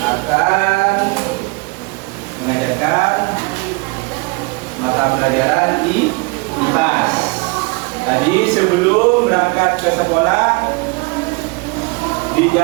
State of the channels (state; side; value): quieter; left; 28.5 dB